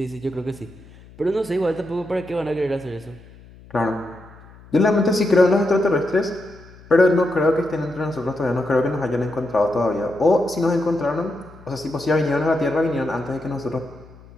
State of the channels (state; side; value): noise; left; hum, 22 dB below the sound